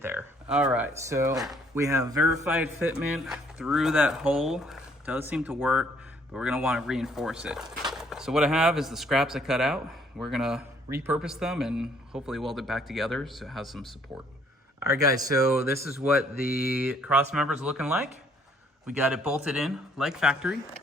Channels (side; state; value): both; normal; correlation 0.64